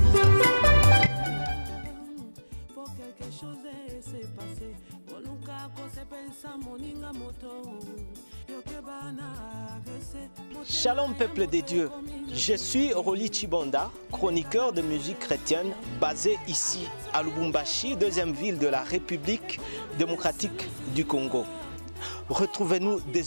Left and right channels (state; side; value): inverted; both; correlation -1.00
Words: Pour quelque chose s'est passé, Shalom peuple des dieux, je suis Roli Chibonda, chroniqueur de musique chrétienne basé ici à Lubumbashi, deuxième ville de la République démocratique du Congo. Retrouvez-nous